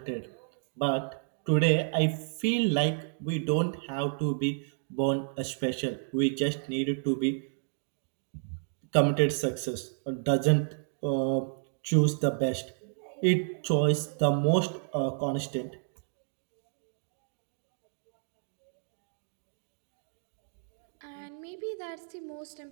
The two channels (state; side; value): silent; left; digital silence